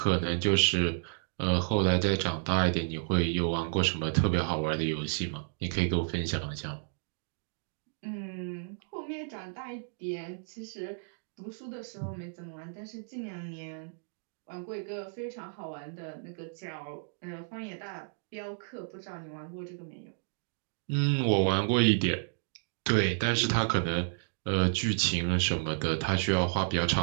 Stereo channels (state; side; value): silent; left; digital silence